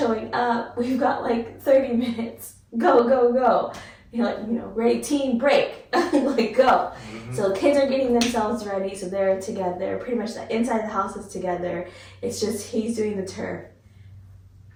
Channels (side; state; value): both; identical; correlation 1.00